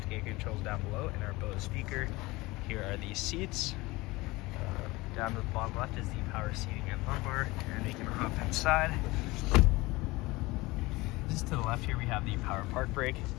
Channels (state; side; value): quieter; right; 21.5 dB